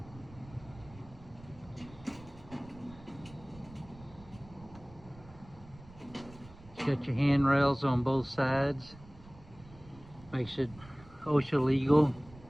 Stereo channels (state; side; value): noise; right; rumble, 20 dB below the sound